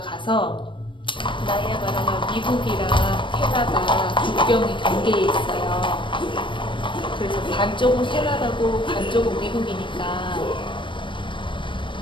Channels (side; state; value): right; late; 0.24 ms